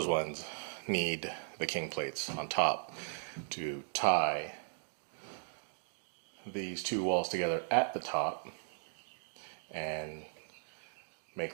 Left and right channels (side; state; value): left; silent; digital silence